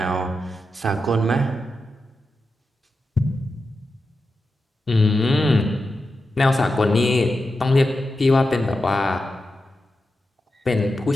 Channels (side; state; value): both; normal; correlation 0.90